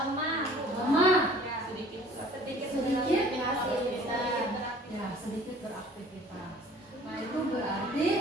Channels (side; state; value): both; normal; correlation 0.51